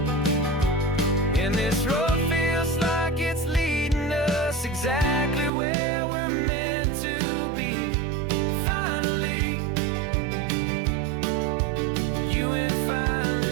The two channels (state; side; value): drops out; left; at 5.5 s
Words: And this road feels like it's leading us exactly where we're meant to be. Finally, you and finally